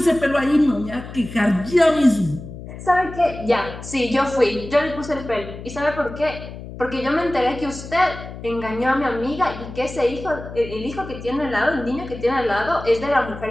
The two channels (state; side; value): noise; left; hum, 12 dB below the sound